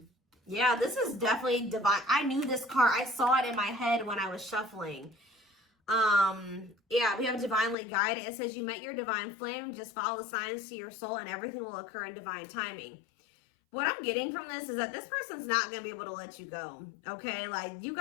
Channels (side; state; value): right; drops out; at 7.8 s